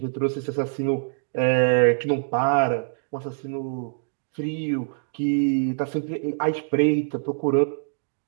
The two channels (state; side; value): silent; left; digital silence